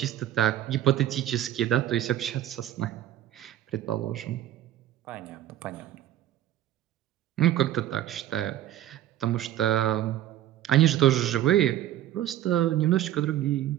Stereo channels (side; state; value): left; quieter; 12.6 dB